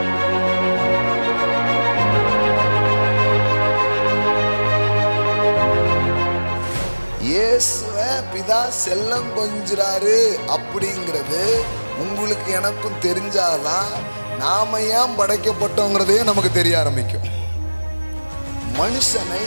இயேசுவை பிதா செல்லம் கொஞ்சிறாரு அப்படிங்கிறது உங்களுக்கு எனக்கும் தெரிஞ்சாதான் நாம ஏன் படைக்கப்பட்டோங்கிறதே நமக்கு தெரிய ஆரம்பிக்கும். மனுஷனை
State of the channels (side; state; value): both; inverted; correlation -1.00